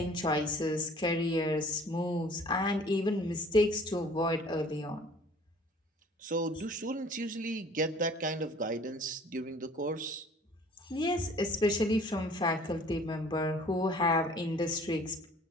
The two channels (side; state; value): both; normal; correlation 0.51